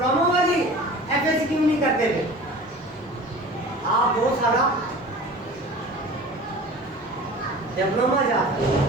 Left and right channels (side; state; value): both; normal; correlation 0.40